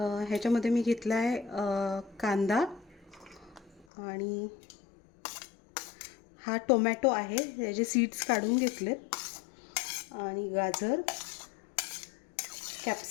मी घेतला आहे कांदा आणि हा टोमॅटो आहे, याचे सीड्स काढून घेतलेत, आणि गाजर,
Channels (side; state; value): right; drops out; at 3.9 s